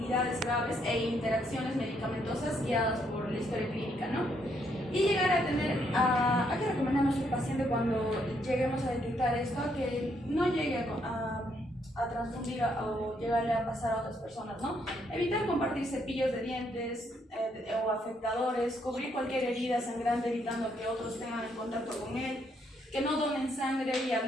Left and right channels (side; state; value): both; normal; correlation 0.73